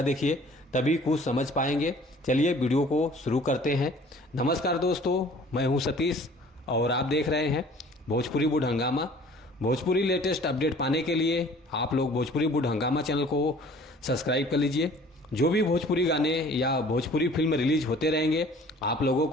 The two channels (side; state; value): both; normal; correlation 0.51